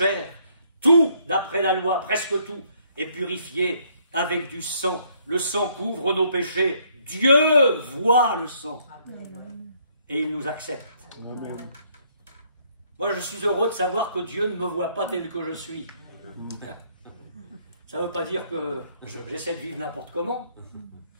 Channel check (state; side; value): inverted; both; correlation -0.67